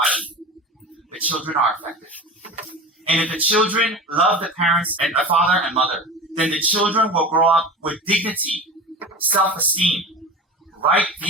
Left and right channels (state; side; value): normal; both; correlation 0.33